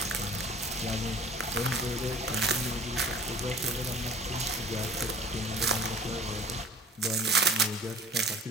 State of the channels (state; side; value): normal; both; correlation 0.47